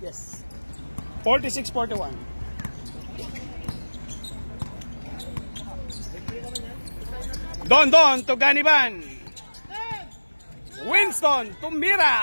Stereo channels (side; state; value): both; inverted; correlation -1.00